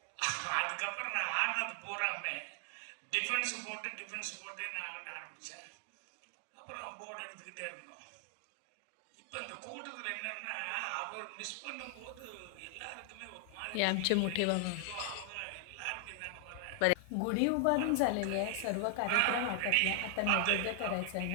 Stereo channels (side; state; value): both; different; correlation 0.00